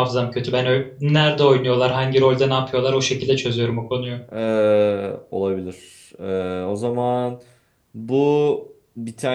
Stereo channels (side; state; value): both; identical; correlation 1.00